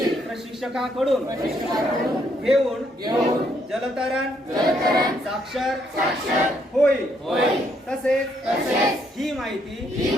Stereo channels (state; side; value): normal; both; correlation 0.72